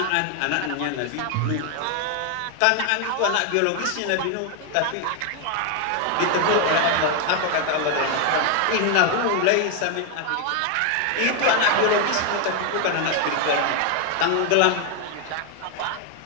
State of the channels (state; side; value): different; both; correlation 0.01